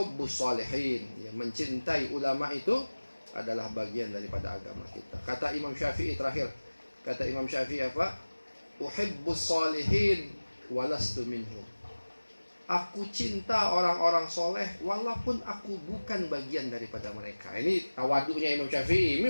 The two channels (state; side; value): inverted; both; correlation -1.00